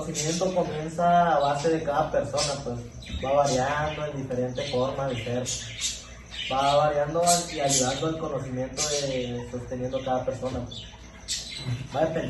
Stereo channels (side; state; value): both; identical; correlation 1.00